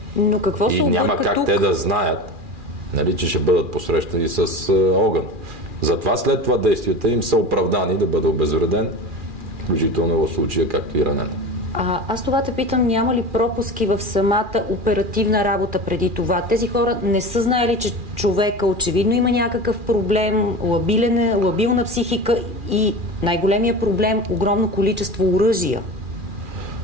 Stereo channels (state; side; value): late; left; 2.4 ms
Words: Но какво и няма как тук? Те да знаят, нали, че ще бъдат посрещани с огън. Затова след това действията им са оправдани да бъде обезвреден, включително в случая, както и ранен. Аз това те питам, няма ли пропуски в самата оперативна работа преди това? Тези хора не са знаели, че човека очевидно има някакъв проблем, лабилна психика и най-големия проблем – огромно количество оръжия.